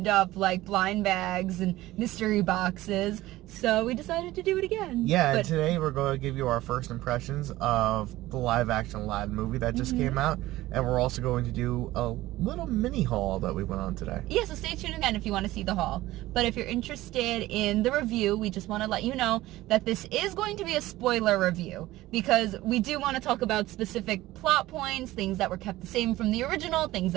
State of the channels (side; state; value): left; quieter; 16.9 dB